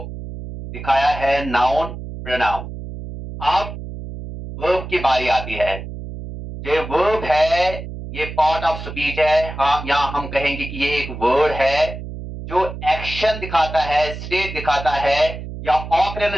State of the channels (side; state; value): right; noise; hum, 9 dB below the sound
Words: दिखाया है नाउन, प्रोनाउन। अब वर्ब की बारी आती है। ये वर्ब है, ये पार्ट ऑफ स्पीच है। हाँ, यहाँ हम कहेंगे कि ये एक वर्ड है जो एक्शन दिखाता है, स्टेट दिखाता है या